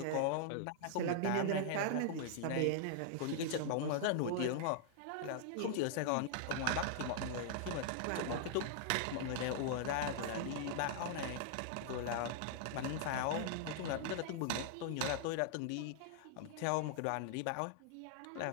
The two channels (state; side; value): different; both; correlation -0.01